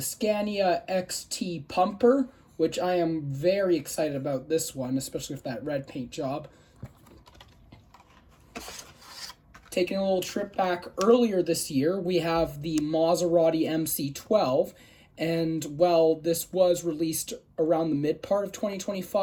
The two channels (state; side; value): identical; both; correlation 1.00